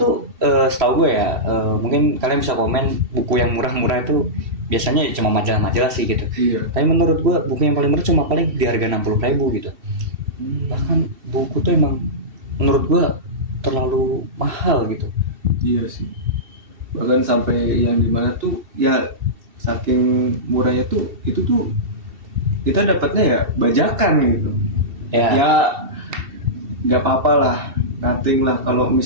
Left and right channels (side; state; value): left; late; 2.7 ms